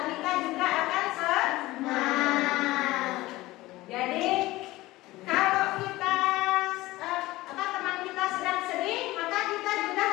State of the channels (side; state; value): right; quieter; 18.4 dB